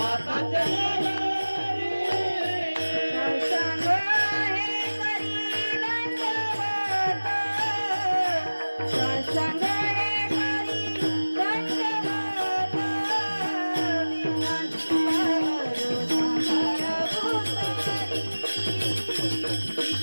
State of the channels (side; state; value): both; inverted; correlation -1.00